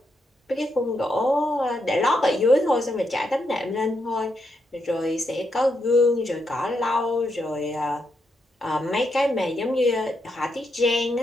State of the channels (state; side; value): normal; both; correlation 0.81